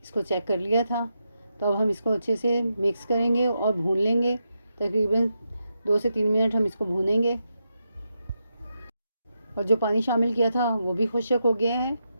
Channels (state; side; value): inverted; both; correlation -0.85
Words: इसको चेक कर लिया था। तो अब हम इसको अच्छे से मिक्स करेंगे और भून लेंगे। तकरीबन 2 से 3 मिनट हम इसको भूनेंगे। और जो पानी शामिल किया था वो भी खुश्क हो गया है।